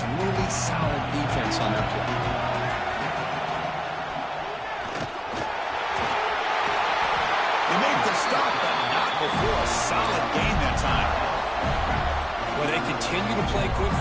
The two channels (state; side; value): identical; both; correlation 1.00